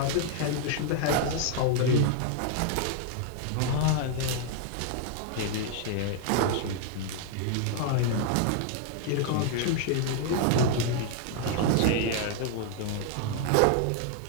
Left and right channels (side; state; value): both; different; correlation 0.00